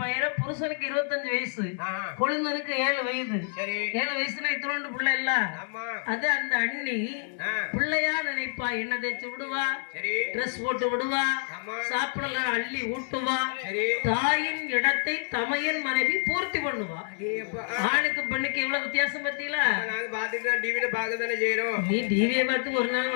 புருஷனுக்கு 25 வயசு ஆஹா. கொழுந்தனுக்கு 7 வயது சரி 7 வயசுனா இத்தனோண்டு பிள்ளை இல்ல ஆமா அது அந்த அண்ணி ஆ. பிள்ளையா நினைப்பா என்ன தேய்ச்சி விடுவா சரி ட்ரெஸ் போட்டு விடுவா ஆமா சாப்பிடலாம் அள்ளி ஊட்டுவா சரி தாயின் இடத்தை தமையன் மனைவி பூர்த்தி பண்ணுவா அடேப்பா. ஆணுக்கு பெண்ணுக்கு எவ்வளவு வித்தியாசம் பத்தியில நாங்க பாத்துட்டு டிவில பாக்க தானே செய்யறோம் நீ டிவியை பார்த்து ஒரு நாள்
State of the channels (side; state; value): right; silent; 59 dB below the other